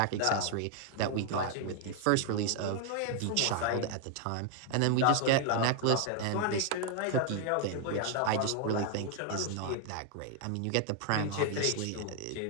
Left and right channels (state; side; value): different; both; correlation 0.00